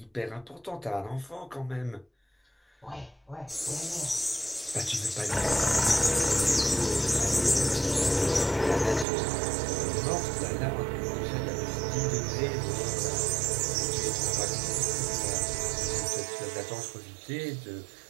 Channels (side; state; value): left; drops out; at 9.1 s